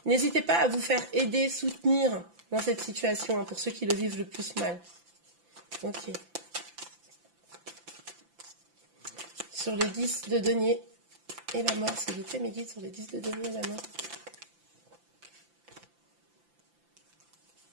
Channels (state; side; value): late; left; 5.9 ms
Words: n'hésitez pas à vous faire aider, soutenir dans cette situation, hein, pour ceux qui le vivent le plus mal. Ok. Sur le 10 de denier et la mort, s'il vous plaît, mes guides, sur le 10 de denier et la mort.